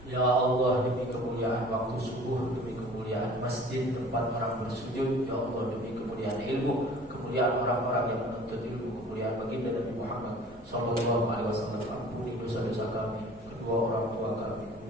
Ya Allah, demi kemuliaan waktu subuh, demi kemuliaan masjid tempat orang bersujud, ya Allah, demi kemuliaan ilmu, kemuliaan orang-orang yang menuntut ilmu, kemuliaan baginda Nabi Muhammad sallallahu alaihi wasallam. Ampuni dosa-dosa kami, kedua orang tua kami,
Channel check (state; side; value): normal; both; correlation 0.47